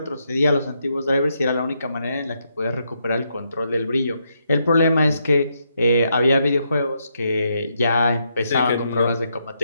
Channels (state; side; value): inverted; both; correlation -0.79